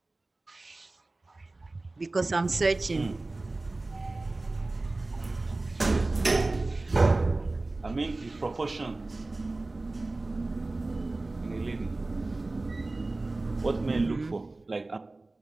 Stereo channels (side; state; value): left; quieter; 3.1 dB